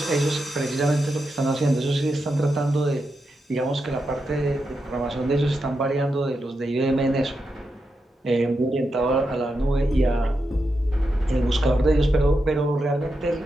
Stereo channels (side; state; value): both; normal; correlation 0.86